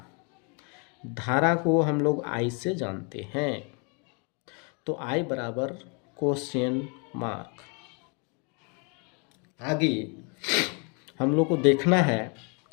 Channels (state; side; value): quieter; right; 35.1 dB